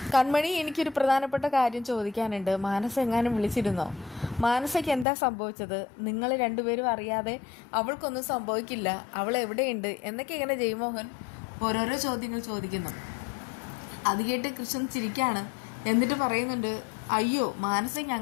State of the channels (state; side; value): drops out; right; at 5.1 s